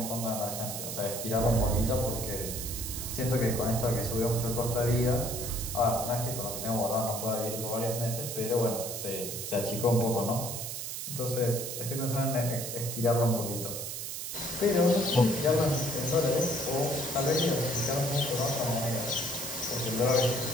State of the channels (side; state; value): right; noise; hiss, 5 dB below the sound